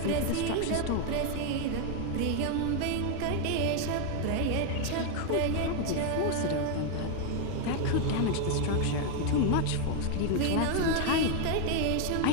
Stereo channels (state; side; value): different; both; correlation 0.01